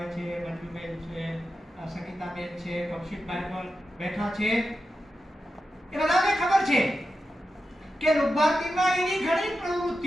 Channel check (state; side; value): normal; both; correlation 0.90